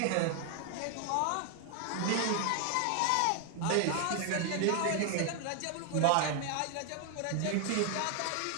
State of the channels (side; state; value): both; different; correlation 0.00